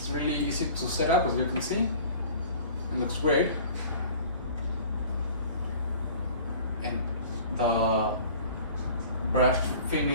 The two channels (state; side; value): inverted; both; correlation -0.46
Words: really easy to set up, as you can see. It looks great. And the brushed